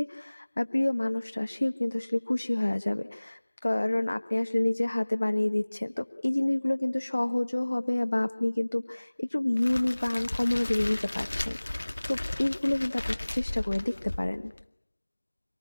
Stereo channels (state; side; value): inverted; both; correlation -1.00